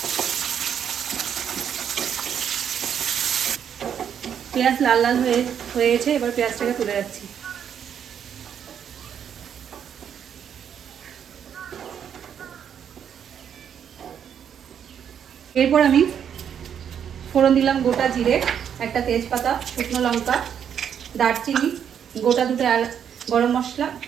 পেঁয়াজ লাল লাল হয়ে গেছে। এবার পেঁয়াজটাকে তুলে যাচ্ছি। এরপর আমি ফোড়ন দিলাম গোটা জিরে, একটা তেজপাতা, শুকনো লঙ্কা, দারচিনি, গোটা দুটো গরম মশলা,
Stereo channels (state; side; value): quieter; left; 8.4 dB